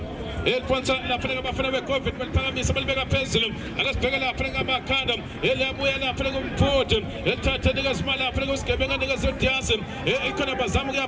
eliphonsa lapha-ke abafana be-COVID baliphakamisa balibeka phezulu akesibheke lapha-ke amakhanda eliyabuya lapha-ke umfuthi elithatha nikezima lapha-ke usigebenga nikeze udiasi ikhona bazama ukuya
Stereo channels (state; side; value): identical; both; correlation 1.00